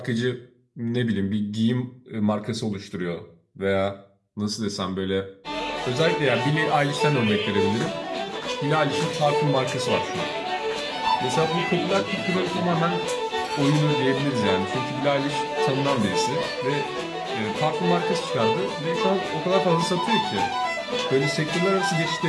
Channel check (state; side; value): identical; both; correlation 1.00